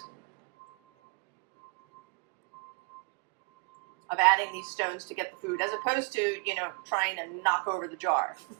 of adding these stones to get the food, as opposed to, you know, trying to knock over the jar.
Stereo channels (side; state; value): left; quieter; 31.7 dB